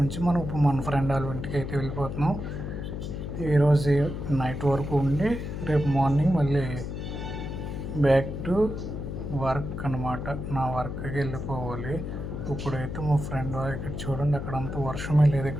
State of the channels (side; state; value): left; noise; hum, 6 dB below the sound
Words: నుంచి మనం ఇప్పుడు మన ఫ్రెండ్ వాళ్ళ ఇంటికి అయితే వెళ్ళిపోతున్నాం. ఈరోజు నైట్ వరకు ఉండి రేపు మార్నింగ్ మళ్ళీ బ్యాక్ టు వర్క్ అన్నమాట. నా వర్క్కి వెళ్ళిపోవాలి. ఇప్పుడైతే మా ఫ్రెండ్ ఇక్కడ చూడండి, అక్కడ అంత వర్షమే లేదు,